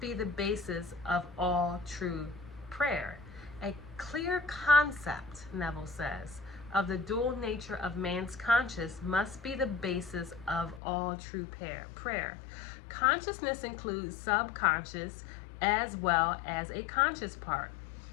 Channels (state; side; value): drops out; right; at 10.8 s